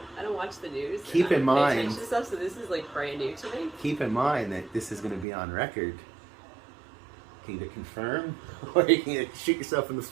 I don't watch the news. Keep in mind. Stuff, so this is like brand new to me. Keep in mind that this is going to be on record. You can either confirm or you can shoot yourself in the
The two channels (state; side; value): drops out; left; at 5.2 s